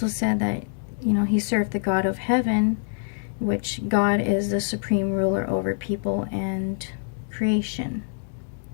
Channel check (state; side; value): silent; right; digital silence